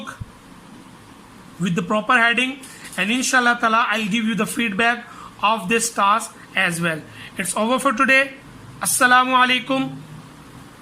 with the proper heading, and inshallah ta'ala I'll give you the feedback of this task as well. It's over for today. Assalamu alaikum.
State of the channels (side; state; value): both; identical; correlation 1.00